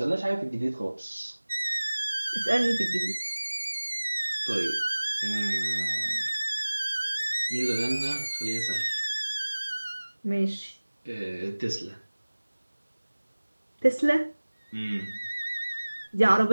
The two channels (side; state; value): both; inverted; correlation -1.00